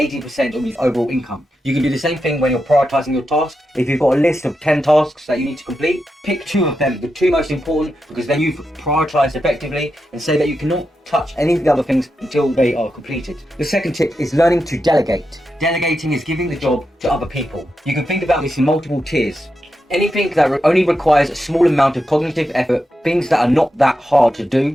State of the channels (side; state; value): both; normal; correlation 0.87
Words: of his overall income. You can do the same thing when you're prioritizing your tasks. If you've got a list of 10 tasks that you need to complete, pick 2 of them, the 2 most important, because then you've prioritized effectively, and say that you cannot touch any of the other things until they are completed. The second tip is learning to delegate. Delegating is giving the job to other people. You can think about this in multiple tiers. Anything that only requires a small amount of cognitive effort, things that are not that hard to